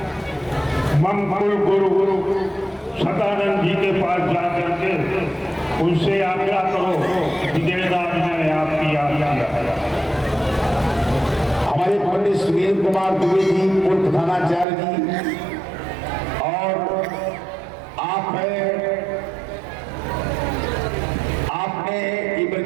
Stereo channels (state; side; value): drops out; left; at 14.7 s